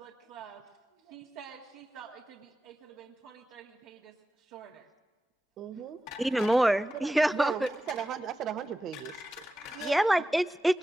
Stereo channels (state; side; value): normal; both; correlation 0.93